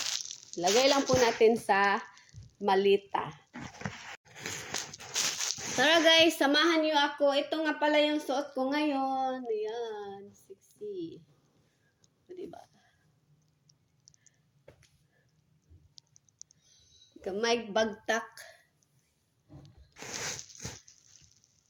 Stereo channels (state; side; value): identical; both; correlation 1.00